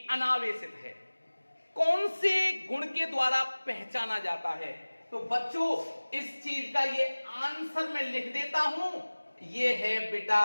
अनावेशित है, कौन से गुण के द्वारा पहचाना जाता है। तो बच्चों इस चीज का ये आंसर मैं लिख देता हूं, ये है बेटा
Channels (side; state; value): both; inverted; correlation -1.00